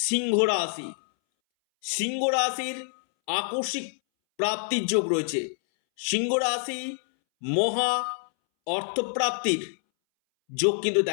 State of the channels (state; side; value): silent; right; 61 dB below the other